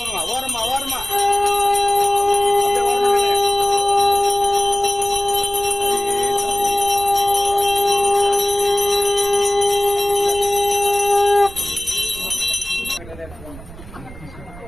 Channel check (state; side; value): noise; right; rumble, 17 dB below the sound